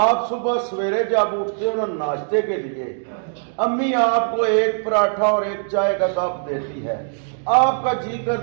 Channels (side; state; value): left; silent; digital silence